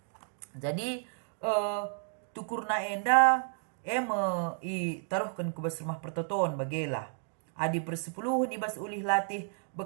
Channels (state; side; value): silent; left; 56 dB below the other